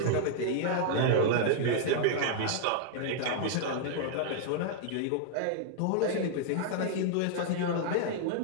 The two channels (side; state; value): both; different; correlation -0.01